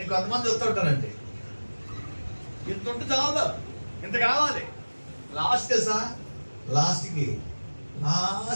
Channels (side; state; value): both; inverted; correlation -1.00